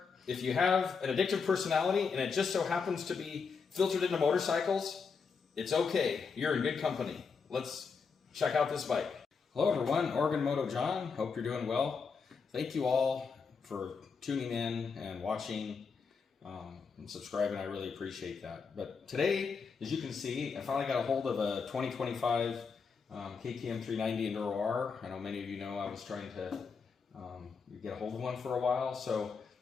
if you have an addictive personality and it just so happens to be filtered into motorcycles, it's okay, you're in good company. Let's check out this bike. Hello everyone, Oregon Moto John, hope you're doing well. Thank you all for tuning in and watching and subscribing, I really appreciate that. But today, as you can see, I finally got a hold of a 2025 KTM 390 Enduro R. I know many of you know I was trying to get a hold of one for a while, so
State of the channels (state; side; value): quieter; right; 5.5 dB